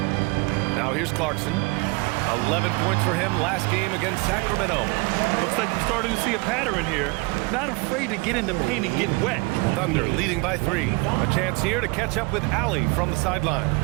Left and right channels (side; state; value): left; quieter; 26.9 dB